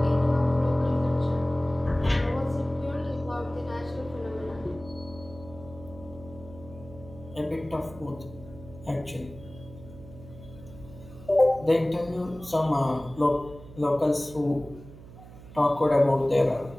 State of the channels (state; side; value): noise; right; hum, 17 dB below the sound